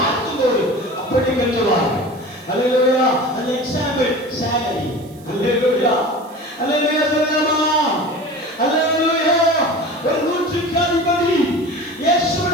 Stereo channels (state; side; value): noise; right; hiss, 26 dB below the sound